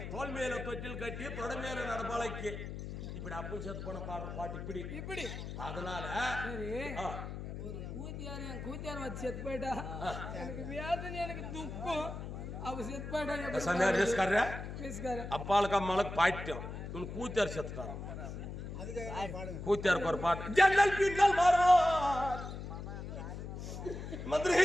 தோல் மேல தொட்டில் கட்டி தொட மேல நடப்பாளைக்கு இப்படி அப்பும் செத்து போன பாடுற பாட்டு இப்படி இப்படி அதனால சரி ஒரு கூத்தியார் என் கூத்தியார் வச்சு செத்து போயிட்டா எனக்கு வேதனை எனக்கு துக்கம் அவ செத்து போயிட்டா சமையல் ரிஸ்கார பேசுக்காரு அப்பாளுக்கு அம்மாளுக்கு பாயிட்டோம் இவனு கூத்தியார் செத்துட்டாங்க கூத்தியாருக்கு ஒரு பாட்டு ஜன்னல் பின்னல் மாறும் மதுரை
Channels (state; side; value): noise; left; hum, 7 dB below the sound